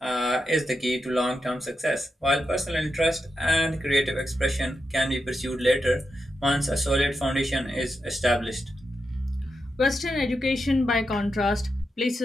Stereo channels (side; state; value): both; normal; correlation 0.87